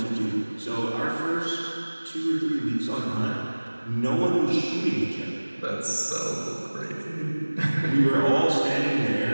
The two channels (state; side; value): inverted; both; correlation -1.00